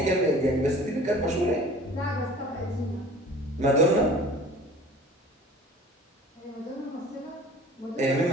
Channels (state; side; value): normal; both; correlation 0.45